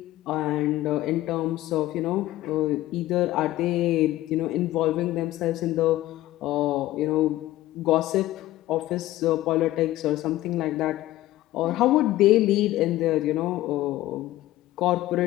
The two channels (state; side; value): quieter; right; 15.7 dB